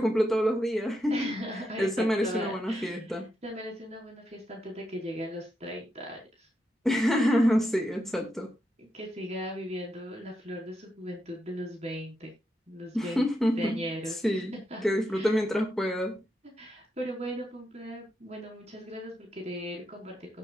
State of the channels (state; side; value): normal; both; correlation 0.83